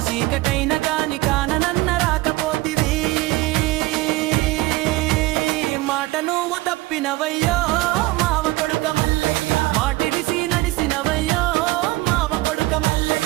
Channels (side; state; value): left; quieter; 19.7 dB